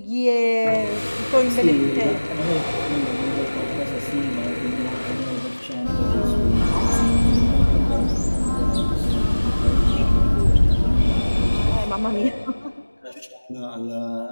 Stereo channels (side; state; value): both; inverted; correlation -1.00